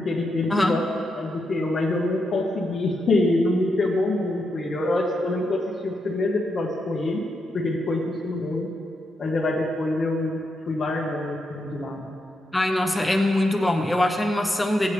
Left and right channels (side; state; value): both; normal; correlation 0.83